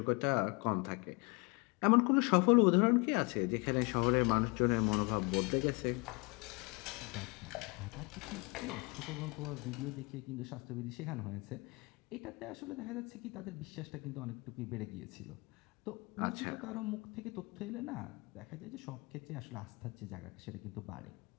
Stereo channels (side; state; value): right; quieter; 28.6 dB